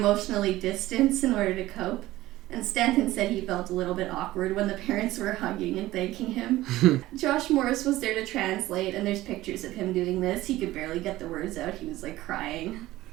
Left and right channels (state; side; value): quieter; left; 16.6 dB